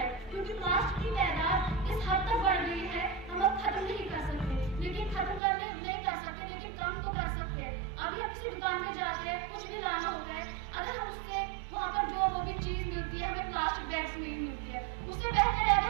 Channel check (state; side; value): drops out; left; at 5.4 s